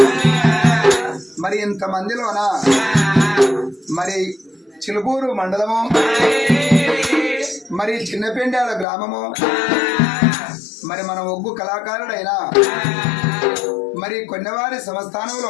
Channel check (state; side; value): drops out; right; at 8.8 s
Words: మరి ఇంతమందిలోన మరి చిలుపూరు మండలము మరి చిన్నపెండాల గ్రామము మరి మన ఒగ్గు కళాకారుడైన మరి కొన్నవారి